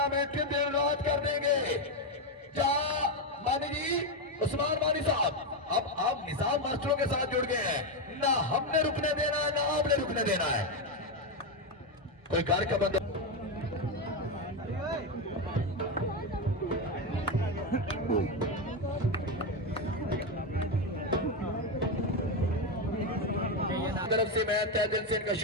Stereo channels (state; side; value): normal; both; correlation 0.09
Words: के दिन रात कर देंगे। मानी जी, उस्मान मानी साहब, अब आप निजाम मास्टरों के साथ जुड़ गए हैं। ना हमने रुकने देना है ना आपने रुकने देना है। कोई घर का बंदा तरफ से मैं तहे दिल से इनका